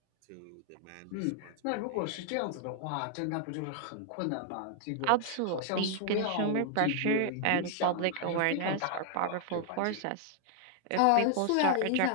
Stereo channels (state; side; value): different; both; correlation 0.00